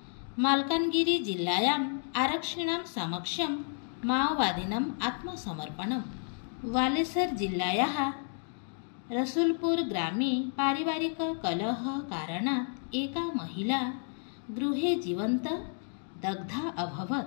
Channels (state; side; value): silent; right; 57 dB below the other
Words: माल्कानगिरी जिल्लायाम् आरक्षिणां समक्षं माओवादिनाम् आत्मसमर्पणम्। बालेश्वर जिल्लायाः रसूलपुर ग्रामे पारिवारिककलहकारणात् एका महिला गृहे जीवन्त दग्धा